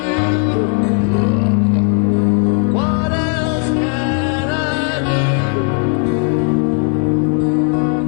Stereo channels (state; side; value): quieter; right; 39.8 dB